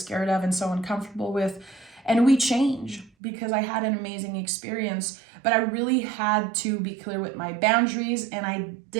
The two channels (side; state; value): left; drops out; at 3.1 s